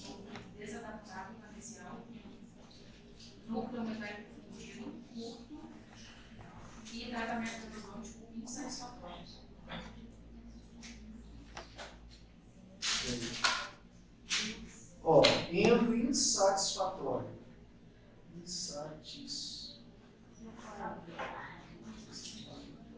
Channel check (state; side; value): identical; both; correlation 1.00